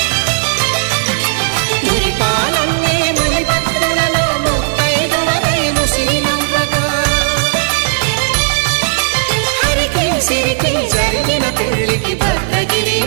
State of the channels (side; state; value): left; silent; 71 dB below the other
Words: మురిపాలన్నీ మునిపత్రులలో ముత్తైదువలై ముసిరి నవ్వగా హరికి సిరికి జరిగిన పెళ్లికి